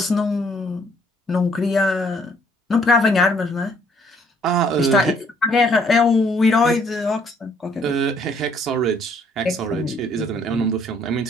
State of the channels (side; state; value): both; normal; correlation 0.65